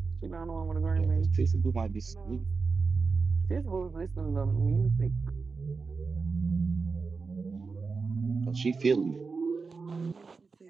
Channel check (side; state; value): left; quieter; 4.6 dB